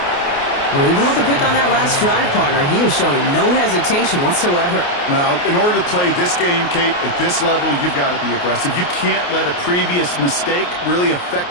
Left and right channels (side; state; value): right; late; 28 ms